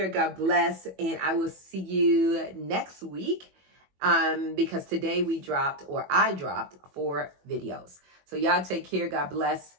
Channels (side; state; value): left; late; 21 ms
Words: God bless. And I will see you next week because today I dropped 4 videos. So y'all take care. God bless.